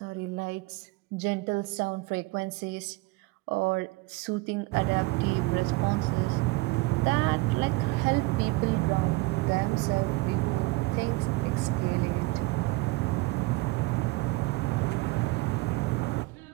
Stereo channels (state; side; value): quieter; left; 22.6 dB